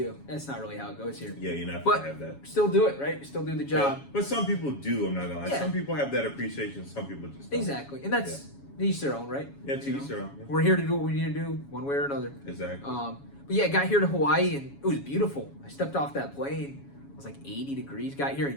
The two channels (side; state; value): right; late; 7.2 ms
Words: That's not really how it goes here. Yeah, you're not But gonna have that. still do it, right? Still do the job. Yeah, but some people do. I'm not gonna lie. Yeah. Some people have that appreciation. Some people just don't. Exactly, and that's each their own, right? Yeah, to You each know? their own. Yeah. We're here to do what we need to do, one way or another. Exactly. But yeah, got here to Hawaii and it was beautiful. I stepped off that plane. It was like 80 degrees. Got here in